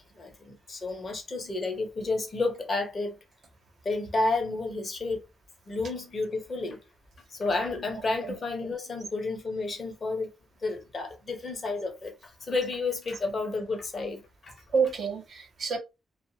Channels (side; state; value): both; normal; correlation 0.80